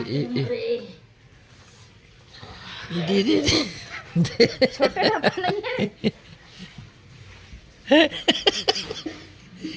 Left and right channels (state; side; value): identical; both; correlation 1.00